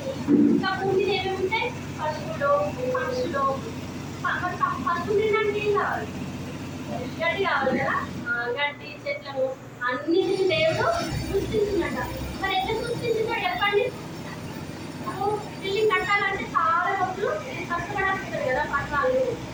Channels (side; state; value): both; identical; correlation 1.00